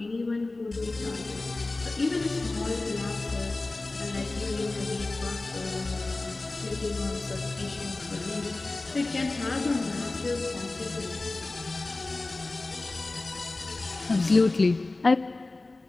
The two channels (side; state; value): right; quieter; 3.2 dB